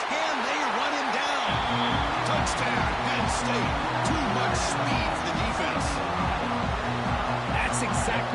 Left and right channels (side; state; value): both; identical; correlation 1.00